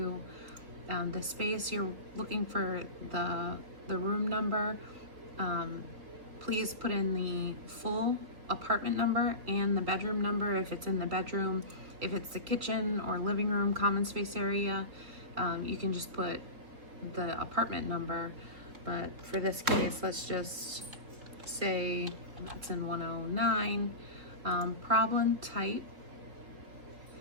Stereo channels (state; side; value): late; left; 3.7 ms